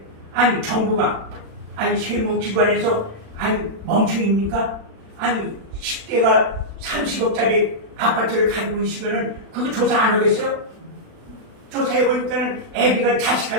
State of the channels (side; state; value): left; late; 36 ms